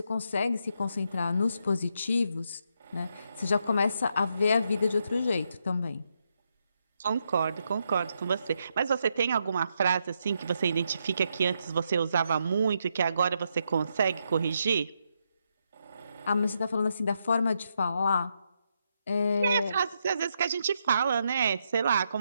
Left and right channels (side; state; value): both; inverted; correlation -0.80